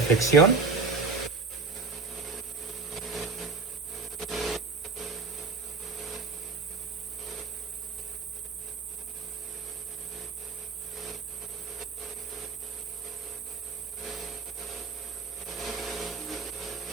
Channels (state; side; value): quieter; left; 4.5 dB